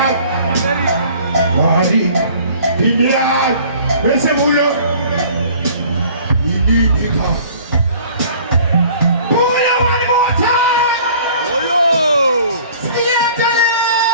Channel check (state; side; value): inverted; both; correlation -0.51